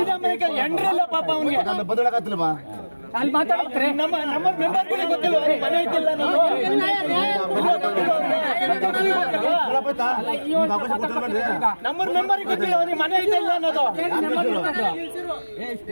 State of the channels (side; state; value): both; inverted; correlation -1.00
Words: ಅಮಾಯಕ ಎಂಡ್ರಿಲ್ಲ ಪಾಪ ಅವನಿಗೆ. ಬದಲಾಗತ್ತಿಲ್ವಾ ಅಲ್ಲಿ ಮಾತಾಡ್ತಾರೆ. ನಮ್ಮ ಮೆಂಬರ್ಗಳಿಗೆ ಗೊತ್ತಿಲ್ಲ, ಮನೆ ಐತಿಲ್ಲ ನಮ್ಮ ಮೆಂಬರ್ಗೆ ಗೊತ್ತಿಲ್ಲ ಅವನಿಗೆ ಮನೆ ಐತಿಲ್ಲ ಅನ್ನೋದು.